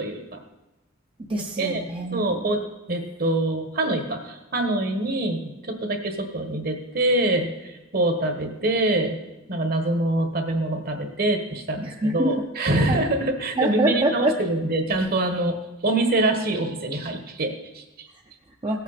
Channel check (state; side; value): normal; both; correlation 0.26